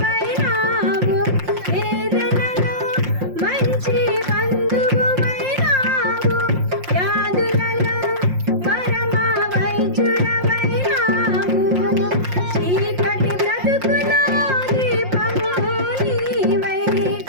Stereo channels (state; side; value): late; left; 5.6 ms